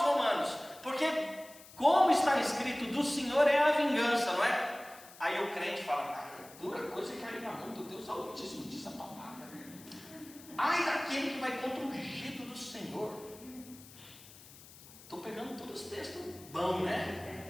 Romanos, porque como está escrito, do Senhor é a vingança, não é? Aí o crente fala, dura coisa que a mão do Deus Altíssimo diz a palavra. Ai daquele que vai contra o ungido do Senhor. Estou pegando todos os textos bons, né?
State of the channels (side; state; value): left; noise; hiss, 19 dB below the sound